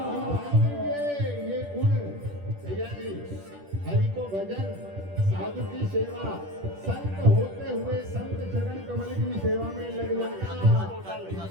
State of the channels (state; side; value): late; left; 10 ms